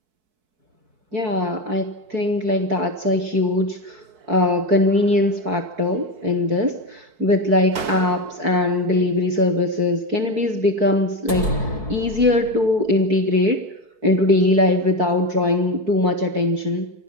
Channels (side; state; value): left; late; 4.6 ms